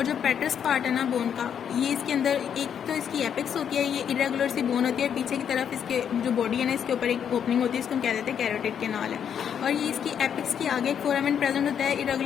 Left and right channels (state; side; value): quieter; right; 8.3 dB